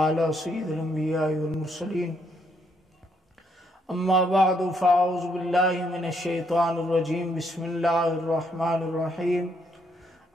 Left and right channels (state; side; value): normal; both; correlation 0.73